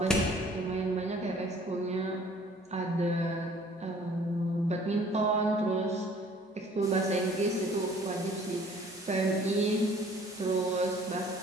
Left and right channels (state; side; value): normal; both; correlation 0.54